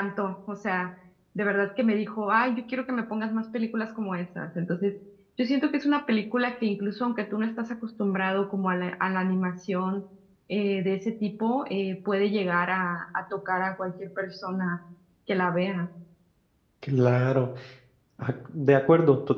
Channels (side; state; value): both; identical; correlation 1.00